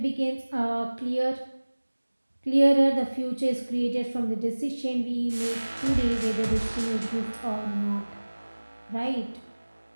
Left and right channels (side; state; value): both; inverted; correlation -1.00